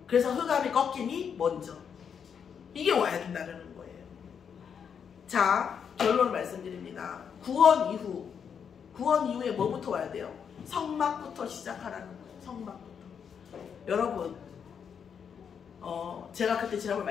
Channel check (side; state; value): right; quieter; 7.2 dB